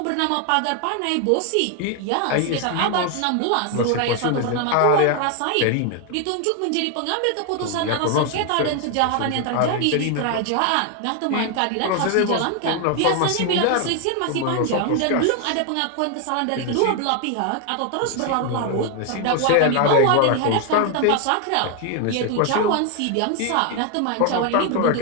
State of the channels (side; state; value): both; different; correlation 0.01